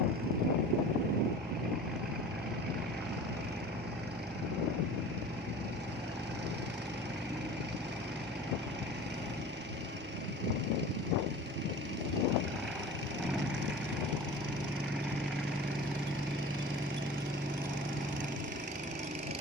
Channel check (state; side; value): normal; both; correlation 0.39